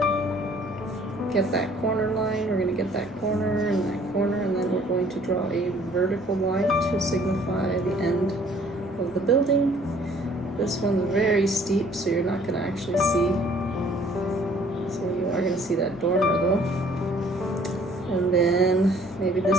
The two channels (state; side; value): normal; both; correlation 0.57